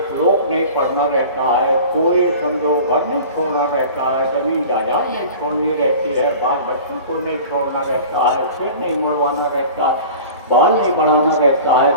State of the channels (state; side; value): inverted; both; correlation -0.40